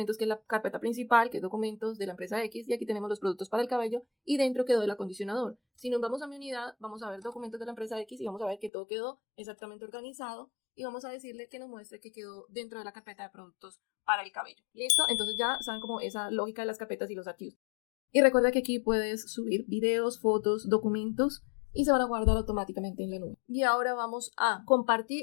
que es la carpeta principal, que es documentos de la empresa X, y aquí tenemos los productos para el cabello, y dentro quedó el acondicionador. Si nos vamos a mi unidad, vamos a ver documentos de la empresa X y vamos a ver que todo quedó exactamente organizado, y vamos a decirle que nos muestre que quedó dentro de la carpeta de productos para el cabello. ¿Listo? Entonces ya saben como esa lógica de las carpetas y los archivos. Y recuerda que aquí puedes subir videos, fotos, documentos, y se van a guardar automáticamente en la nube. Y ahora vamos a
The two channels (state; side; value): drops out; right; at 8.7 s